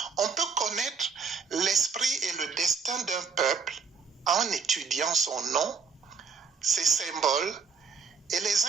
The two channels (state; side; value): quieter; left; 5.6 dB